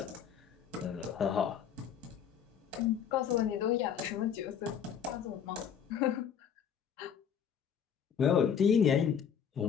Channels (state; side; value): quieter; right; 8.0 dB